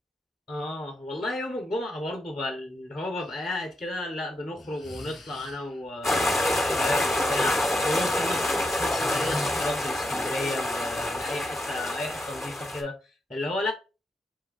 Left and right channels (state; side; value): normal; both; correlation 0.82